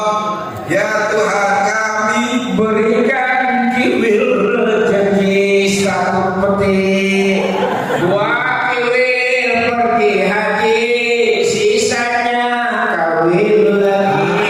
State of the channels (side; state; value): both; identical; correlation 1.00